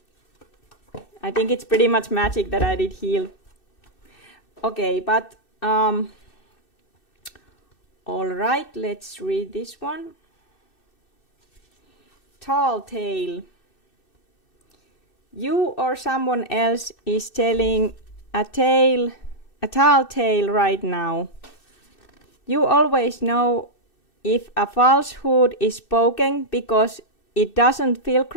I think it's pretty much magic that I did heal. Okay, but all right, let's read this one. Tall tale. You or someone else is telling a tall tale right now. You always know if a falsehood is spoken because it doesn't feel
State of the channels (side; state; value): right; late; 2.6 ms